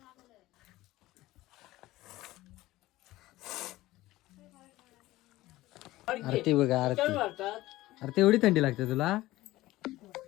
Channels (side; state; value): right; quieter; 17.3 dB